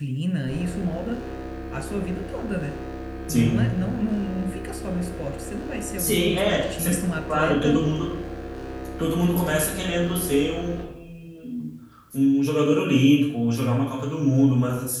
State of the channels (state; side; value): identical; both; correlation 1.00